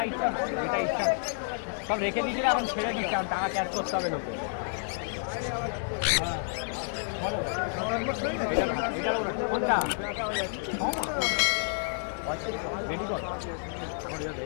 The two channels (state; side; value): silent; right; digital silence